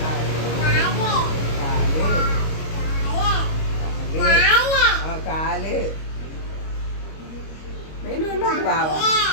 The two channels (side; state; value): right; late; 25 ms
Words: കാല്. വെയിൽ കൊണ്ടിട്ട് ബാവ,